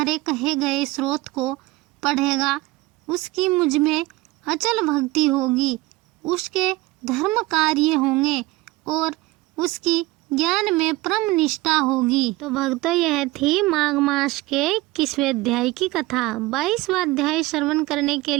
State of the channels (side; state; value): left; quieter; 19.9 dB